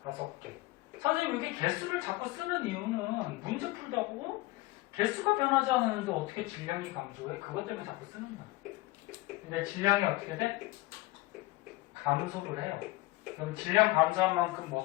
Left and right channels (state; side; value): quieter; right; 20.3 dB